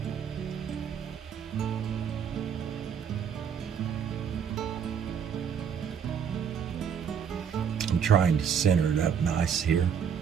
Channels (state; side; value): quieter; left; 7.4 dB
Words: I'm trying to center it up nice here,